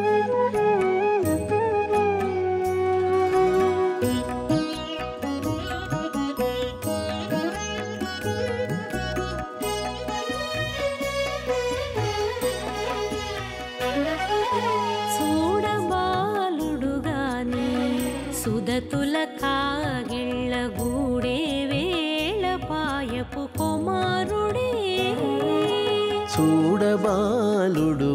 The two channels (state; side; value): identical; both; correlation 1.00